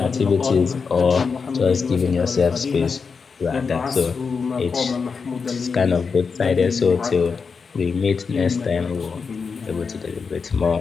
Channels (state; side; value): quieter; right; 5.3 dB